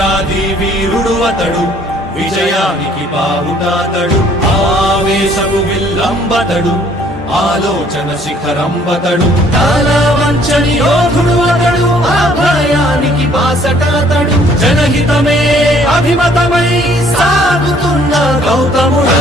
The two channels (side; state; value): both; normal; correlation 0.60